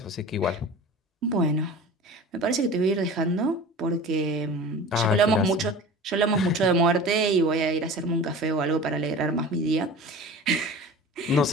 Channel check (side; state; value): both; normal; correlation 0.37